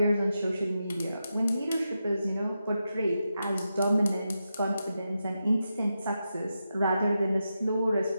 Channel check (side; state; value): both; inverted; correlation -0.88